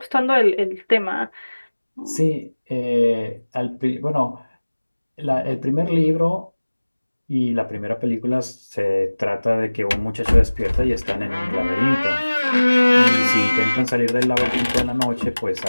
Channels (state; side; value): inverted; both; correlation -1.00